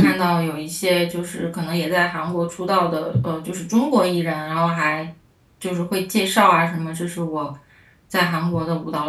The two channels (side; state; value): both; identical; correlation 1.00